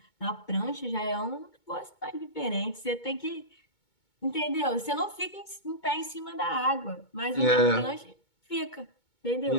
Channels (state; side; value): late; right; 2.2 ms